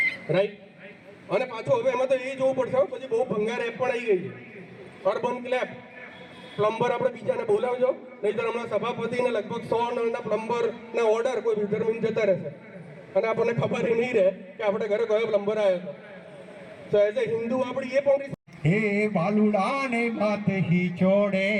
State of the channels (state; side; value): identical; both; correlation 1.00